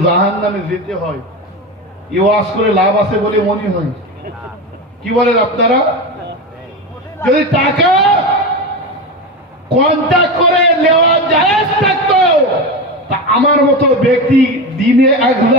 জাহান্নামে যেতে হয়, এই ওয়াজ করে লাভ আছে বলে মনে হয়? কি বলেন আপনারা? যদি টাকা কন্ট্যাক্ট করে নেওয়া জায়েজ থাকতো, তা আমার মতো ব্যক্তি দিনে এক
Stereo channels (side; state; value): both; normal; correlation 0.20